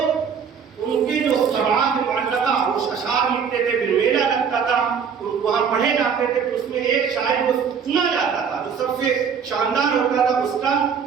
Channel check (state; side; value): quieter; left; 6.7 dB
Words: ان کے جو سماعت معلقہ وہ اشعار لکھتے تھے، پھر میلہ لگتا تھا، وہاں پڑھے جاتے تھے، تو اس میں ایک شاعر کو چنا جاتا تھا جو سب سے شاندار ہوتا تھا، اس کا